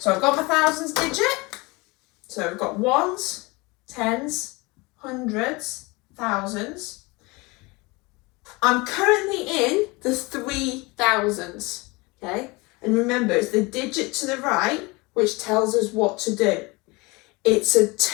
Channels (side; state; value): right; quieter; 25.0 dB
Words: I've got my thousands digit. So I've got ones, tens, hundreds, thousands. I'm currently in the 3,000s, okay? And remember, it's the digit to the right which tells us what to do. It's a